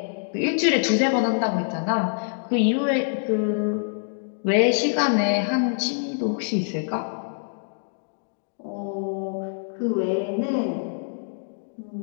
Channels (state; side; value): silent; right; digital silence